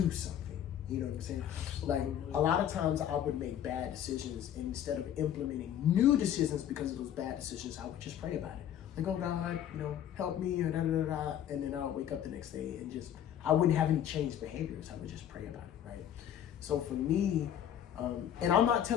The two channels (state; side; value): quieter; right; 10.2 dB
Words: something. You know what I'm saying? Like a lot of times I would make bad decisions, and instead of implementing new decisions because of those bad decisions, I would just pray about it. Like, oh God, help me, or da da da da. And then I'll wake up the next day and I wouldn't have any changed behaviors. I would just pray about it, right? So for me, and I'm not